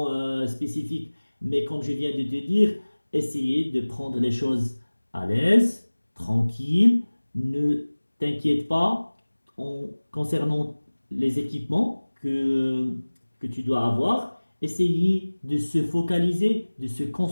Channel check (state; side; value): inverted; both; correlation -1.00